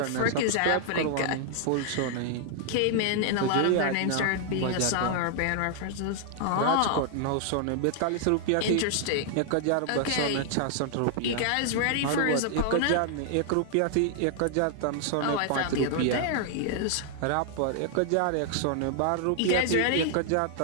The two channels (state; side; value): different; both; correlation 0.00